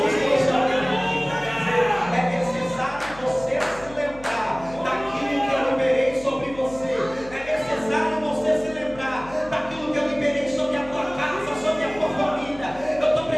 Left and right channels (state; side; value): noise; left; hum, 19 dB below the sound